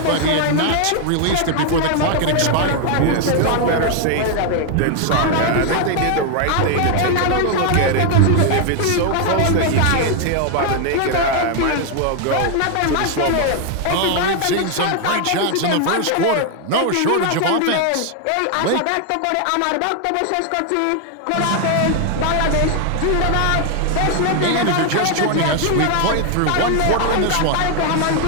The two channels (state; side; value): different; both; correlation 0.00